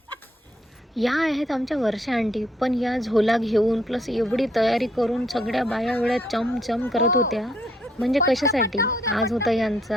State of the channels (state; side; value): normal; both; correlation 0.69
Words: या आहेत आमच्या वर्षा आंटी. पण या झोला घेऊन प्लस एवढी तयारी करून सगळ्या बाया एवढ्या चमचम करत होत्या. म्हणजे कशासाठी? आज होता